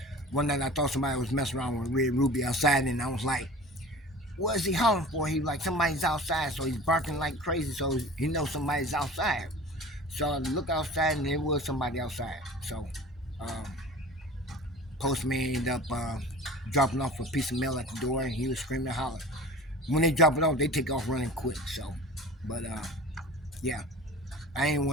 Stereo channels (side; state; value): both; normal; correlation 0.40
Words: one night I thought somebody was messing around with Red Ruby outside, and I was like, what is he hollering for? He was like, somebody's outside. So he's barking like crazy, so he knows somebody's outside. So I look outside, and there was somebody outside. So postman ended up dropping off a piece of mail at the door, and he was screaming and hollering. When they drop it off, they take off running quick. So, but yeah, I ain't